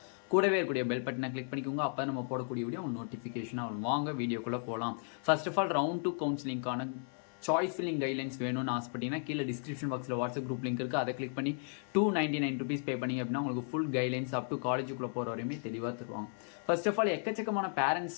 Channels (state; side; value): silent; right; 55 dB below the other